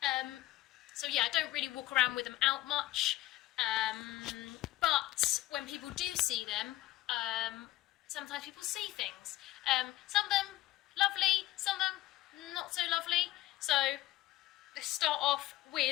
So yeah, I don't really walk around with them out much, but when people do see them, sometimes people see things. Some of them lovely, some of them not so lovely. So let's start off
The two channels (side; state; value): right; quieter; 16.5 dB